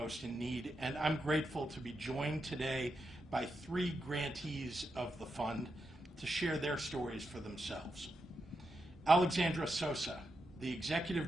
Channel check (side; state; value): both; normal; correlation 0.86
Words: in need, and I'm grateful to be joined today by 3 grantees of the fund to share their stories for themselves. Alexandra Sosa, the